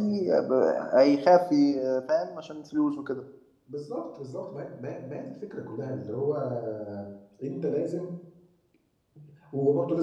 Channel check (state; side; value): identical; both; correlation 1.00